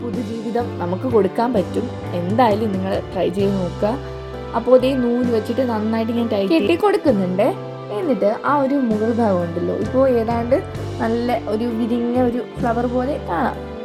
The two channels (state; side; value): identical; both; correlation 1.00